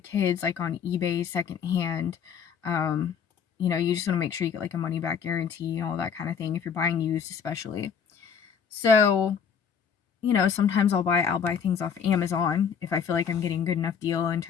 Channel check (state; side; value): quieter; right; 7.1 dB